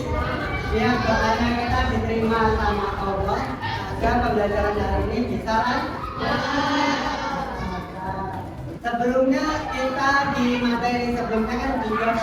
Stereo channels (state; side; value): identical; both; correlation 1.00